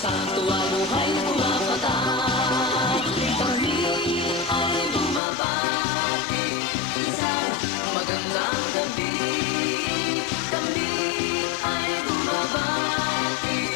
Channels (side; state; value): right; drops out; at 5.2 s